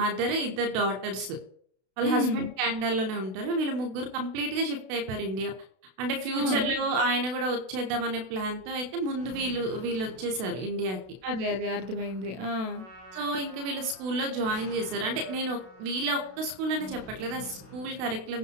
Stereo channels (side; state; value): left; late; 32 ms